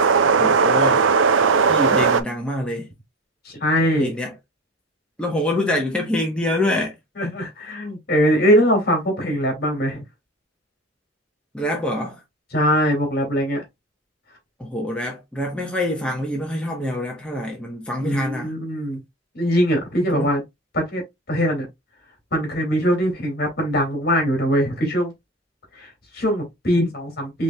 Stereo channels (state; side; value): normal; both; correlation 0.28